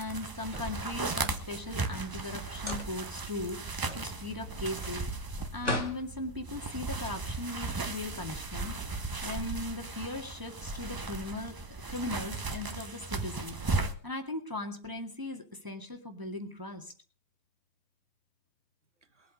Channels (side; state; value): left; late; 1.0 ms